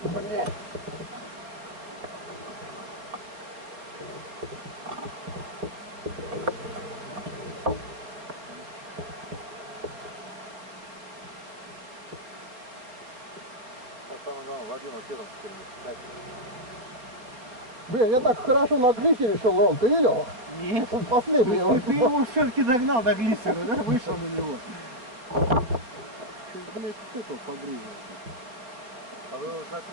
Блядь. Самое главное, Владимир, что там теперь? Блин, я так хорошо на глиссере шел, Ром, ты видел? Нет. Он последний. Ты его все-таки догнал до глиссера, да? Вышел на него. Чуть, блядь, стыкал погрызил. А вы его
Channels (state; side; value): late; left; 4.2 ms